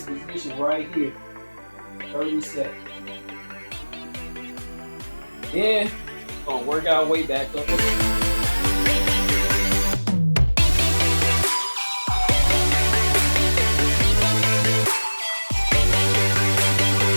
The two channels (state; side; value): inverted; both; correlation -1.00